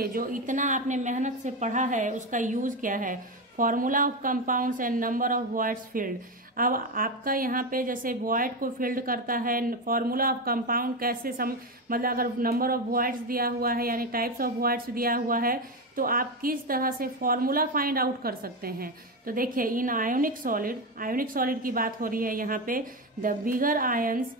जो इतना आपने मेहनत से पढ़ा है उसका यूज क्या है, formula of compounds and number of voids field. अब आपका यहाँ पे जैसे वॉइड को फील्ड करता है, फॉर्मूला ऑफ कंपाउंड कैसे मतलब अगर नंबर ऑफ वॉइड्स दिया हुआ है यानी टाइप्स ऑफ वॉइड्स दिया हुआ है तो आप किस तरह से फॉर्मूला फाइंड आउट कर सकते हैं। तो देखिए, इन आयोनिक सॉलिड की बात हो रही है यहाँ पे, the bigger ions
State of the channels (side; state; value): both; normal; correlation 0.14